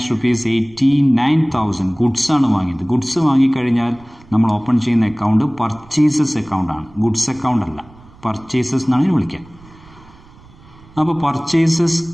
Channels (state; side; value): noise; right; rumble, 24 dB below the sound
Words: ₹89,000. Goods ആണ് വാങ്ങിയത്. ഗുഡ്സ് വാങ്ങിക്കഴിഞ്ഞാൽ നമ്മൾ ഓപ്പൺ ചെയ്യുന്ന അക്കൗണ്ട് പർച്ചേസസ് അക്കൗണ്ടാണ്, ഗുഡ്സ് അക്കൗണ്ട് അല്ല. പർച്ചേസസ് എന്നാണ് ഇതിന് വിളിക്കുക. അപ്പോൾ പർച്ചേസസ്